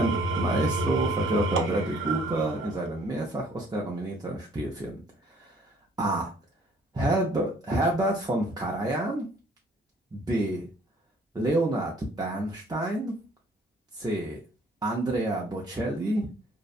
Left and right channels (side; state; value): both; normal; correlation 0.59